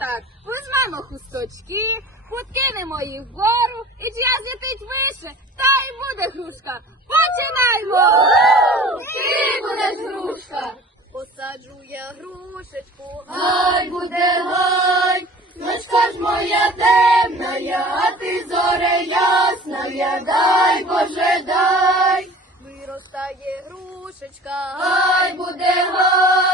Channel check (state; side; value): normal; both; correlation 0.43